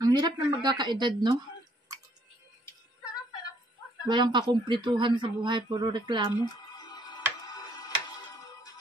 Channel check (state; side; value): normal; both; correlation 0.66